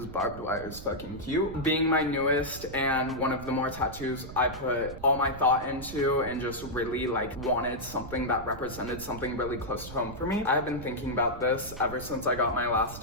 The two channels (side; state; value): right; noise; rumble, 12 dB below the sound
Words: barbed wire is fucking cute. Being my newest and one of the more tattoos I put all my thought into and just really like wanted something that represented something really close to home for me. I have been thinking about this ever since I got my